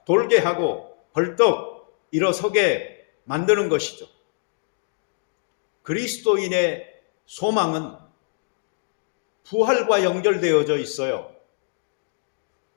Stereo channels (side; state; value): right; silent; digital silence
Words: 돌게 하고 벌떡 일어서게 만드는 것이죠. 그리스도인의 소망은 부활과 연결되어져 있어요.